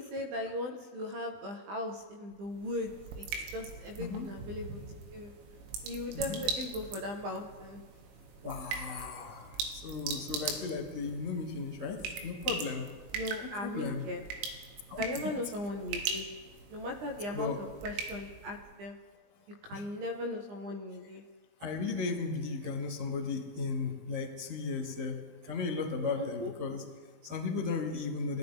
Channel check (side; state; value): left; late; 20 ms